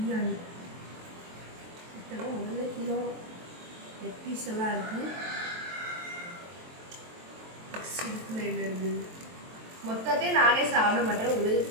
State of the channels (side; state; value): left; late; 23 ms